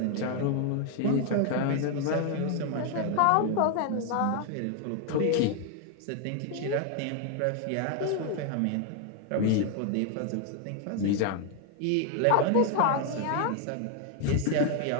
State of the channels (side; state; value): both; different; correlation 0.01